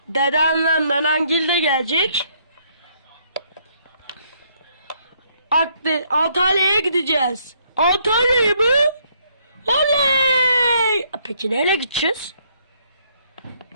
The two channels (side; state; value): both; inverted; correlation -0.69